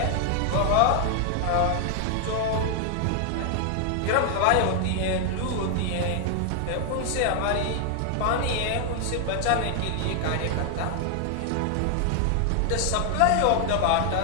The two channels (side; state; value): both; different; correlation 0.00